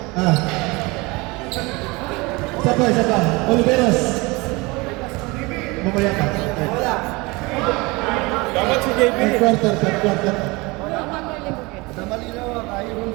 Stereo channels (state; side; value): quieter; left; 24.6 dB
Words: Isa pa. Oliveros. Mamaya ka. Dapat si JB. Third quarter. Namalinaw ang ayaw.